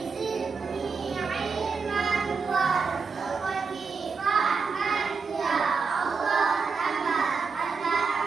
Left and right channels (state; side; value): quieter; left; 5.1 dB